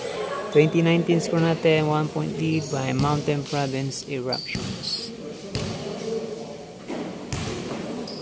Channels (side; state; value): both; identical; correlation 1.00